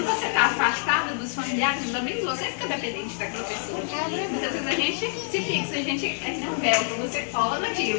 você está afastado dos familiares, também você fica dependente daquela pessoa. Muitas vezes a gente se fixa, a gente é que nem um véu, você cola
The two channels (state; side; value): silent; right; 61 dB below the other